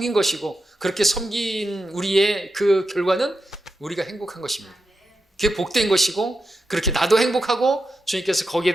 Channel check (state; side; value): normal; both; correlation 0.88